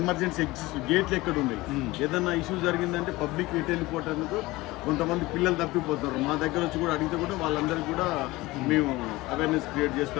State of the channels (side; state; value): right; quieter; 20.0 dB